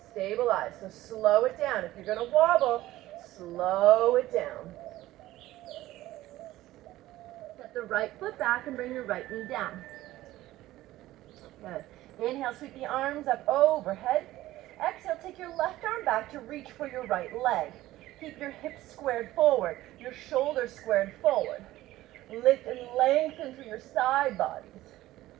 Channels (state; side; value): quieter; left; 15.9 dB